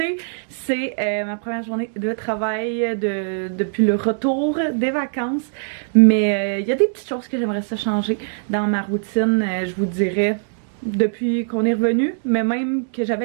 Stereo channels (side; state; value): left; silent; digital silence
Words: c'est ma première journée de travail depuis le retour des vacances. Mais il y a des petites choses que j'aimerais ça changer dans ma routine, je vous dirais, depuis qu'on est revenu, mais même que j'avais